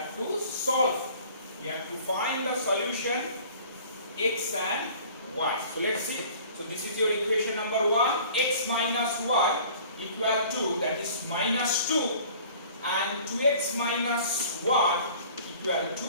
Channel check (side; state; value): both; inverted; correlation -0.48